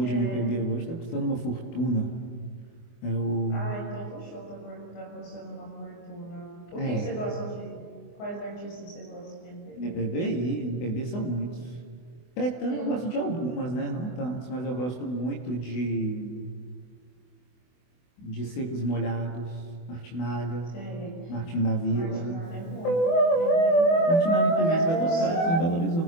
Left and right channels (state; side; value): late; right; 24 ms